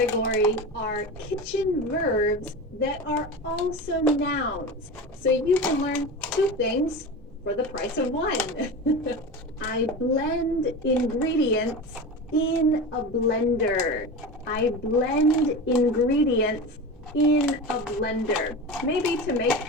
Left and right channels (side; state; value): both; normal; correlation 0.28